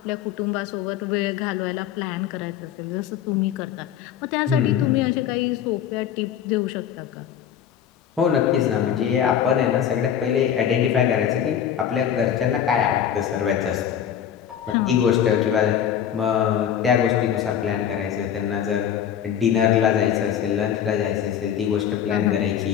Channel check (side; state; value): right; quieter; 9.3 dB